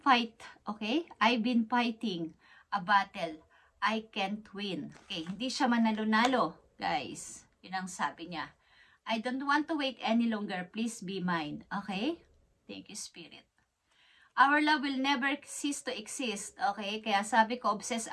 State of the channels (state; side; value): identical; both; correlation 1.00